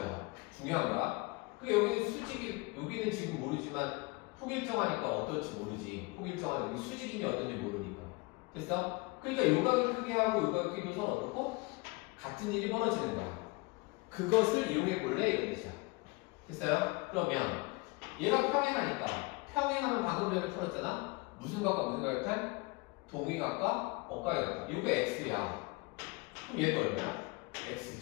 중요한 거야. 그게 여기는 수직이 여기는 지금 모르지만 폭일정하니까 어떨지 모르지. 폭일정하니까 여기 수직인지 어떤지 모르니까. 됐어? 그러니까 요 각의 크기하고 요 각의 크기도 서로 어떻고 같은 일이 벌어지는 거야. 그것을 이용해 볼래? 이런 뜻이야. 됐어요? 그러면 얘가 평행하니까 평행하면 방금 전에 풀었잖아? 무슨 각과 무슨 각일까? 동위각과 억각이각과. 이거 x야. 그럼 얘도 얼마야? x지.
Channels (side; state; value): right; quieter; 26.2 dB